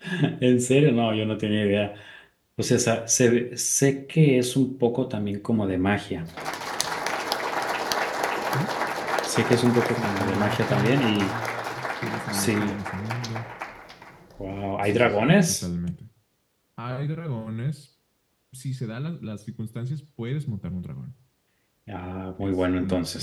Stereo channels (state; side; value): identical; both; correlation 1.00